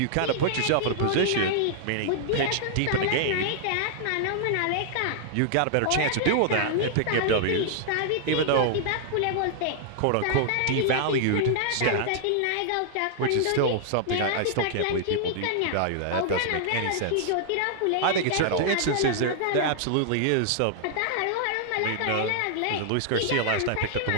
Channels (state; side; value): different; both; correlation -0.01